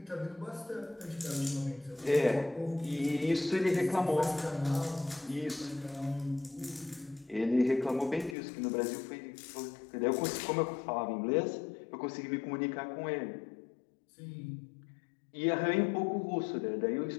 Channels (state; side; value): drops out; right; at 8.3 s